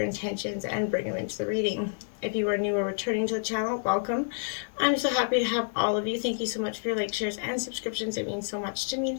intentions, and bring them into the reading. If you are new or returning to the channel, welcome. I'm so happy to have all of you. Thank you so much for your likes, shares, and subscriptions. It means so much to me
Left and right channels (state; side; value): silent; right; digital silence